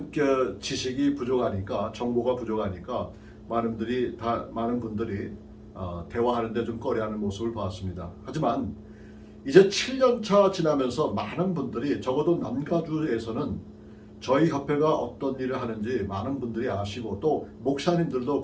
지식이 부족하니까, 정보가 부족하니까 많은 분들이 대화하는데 좀 꺼려하는 모습을 봤습니다. 하지만 이제 7년차 지나면서 많은 분들이, 적어도 남가주에서는 저희 협회가 어떤 일을 하는지 많은 분들이 아시고, 또 목사님들도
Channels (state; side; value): identical; both; correlation 1.00